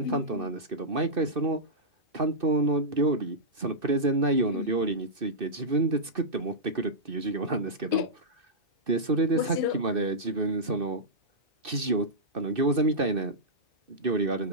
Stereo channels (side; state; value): left; late; 2.6 ms